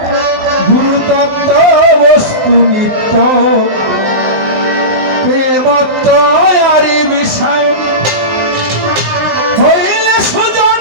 গুরুতত্ত্ব বস্তু নিত্য প্রেমত্ব আরি বিষয় হইলে সুজন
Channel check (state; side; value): late; left; 19 ms